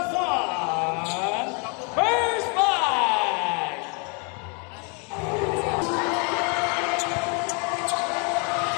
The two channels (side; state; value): right; quieter; 35.0 dB